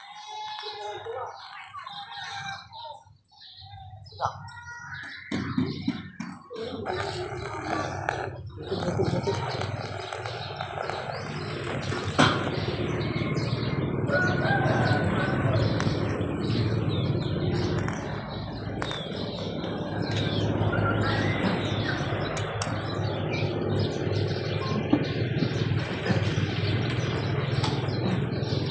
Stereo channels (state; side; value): identical; both; correlation 1.00